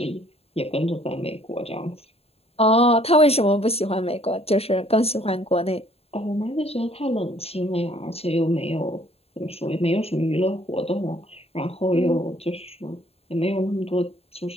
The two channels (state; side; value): late; right; 0.29 ms